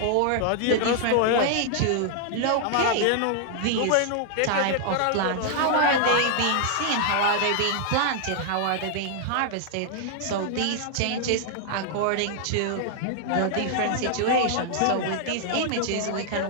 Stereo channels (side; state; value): both; different; correlation -0.01